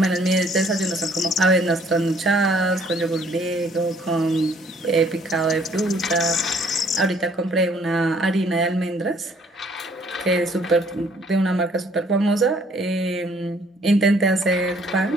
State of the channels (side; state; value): both; normal; correlation 0.61